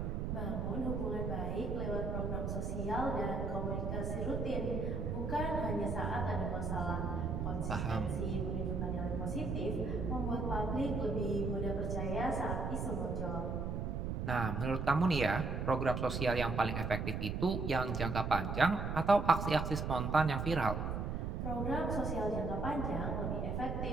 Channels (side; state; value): right; noise; rumble, 2 dB below the sound